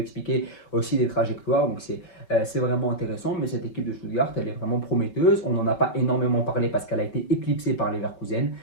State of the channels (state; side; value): late; right; 5.8 ms